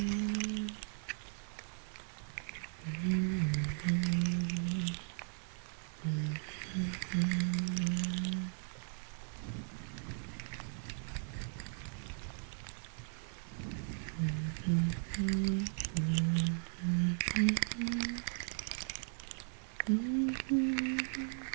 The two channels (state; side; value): silent; left; 53 dB below the other